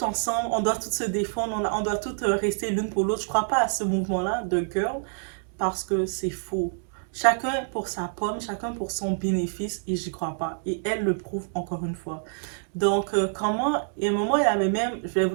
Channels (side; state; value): left; silent; digital silence